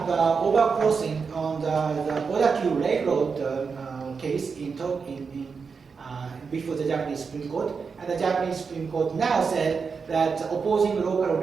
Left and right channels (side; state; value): left; quieter; 5.4 dB